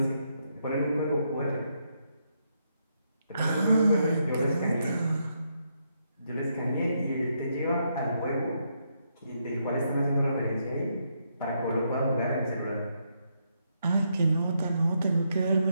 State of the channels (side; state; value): both; inverted; correlation -0.78